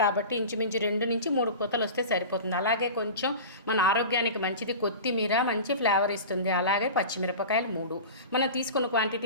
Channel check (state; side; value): inverted; both; correlation -0.33